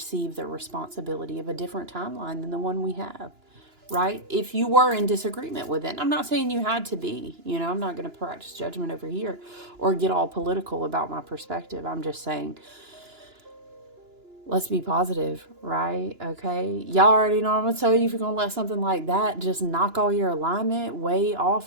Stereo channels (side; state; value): left; late; 2.9 ms